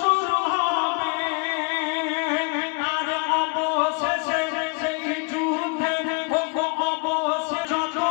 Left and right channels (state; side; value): quieter; right; 33.2 dB